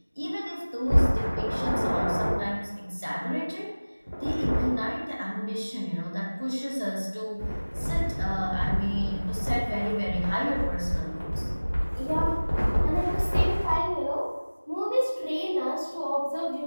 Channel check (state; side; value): inverted; both; correlation -1.00